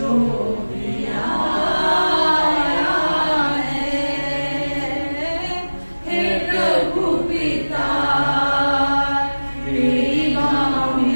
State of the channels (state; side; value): inverted; both; correlation -1.00